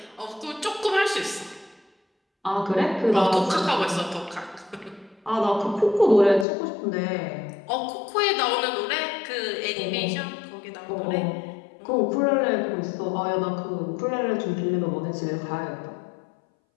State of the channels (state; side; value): drops out; right; at 6.5 s